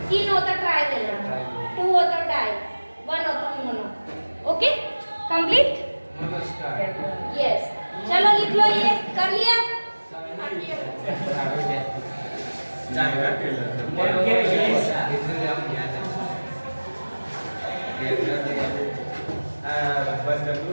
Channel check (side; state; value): both; inverted; correlation -1.00